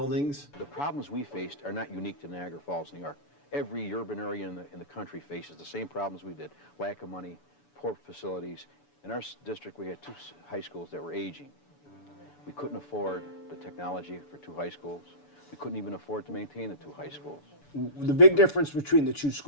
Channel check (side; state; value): right; late; 6.9 ms